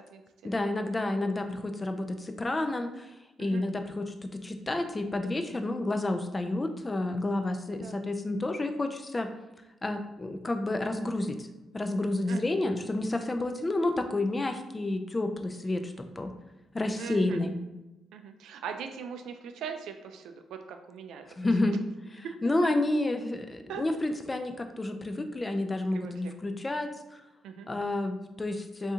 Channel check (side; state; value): both; normal; correlation 0.92